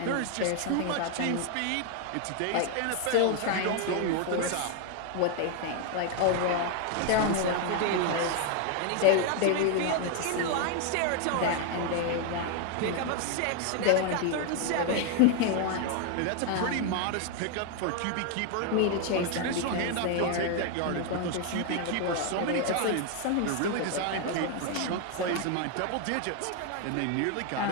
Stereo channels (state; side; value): different; both; correlation 0.00